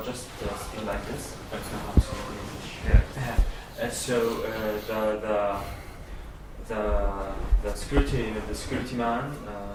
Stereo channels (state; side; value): identical; both; correlation 1.00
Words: just sitting like this. So the security man